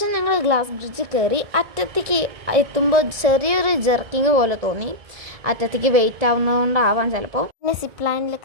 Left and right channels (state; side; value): late; left; 1.7 ms